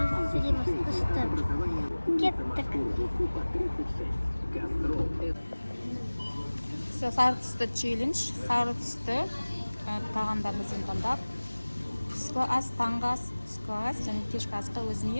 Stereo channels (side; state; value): both; inverted; correlation -1.00